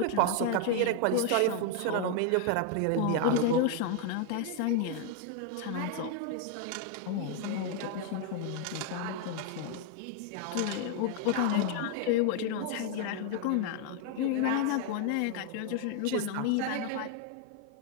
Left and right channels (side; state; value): both; different; correlation 0.00